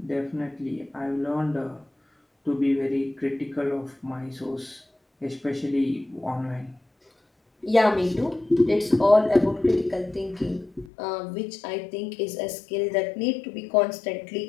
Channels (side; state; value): right; drops out; at 10.9 s